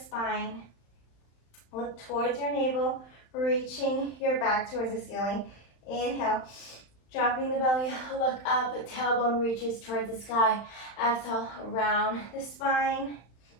Look towards your navel, reaching your back towards the ceiling. Inhale, dropping the belly, look up, tailbone reaches towards the sky. Exhale, round the spine,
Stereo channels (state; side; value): late; right; 35 ms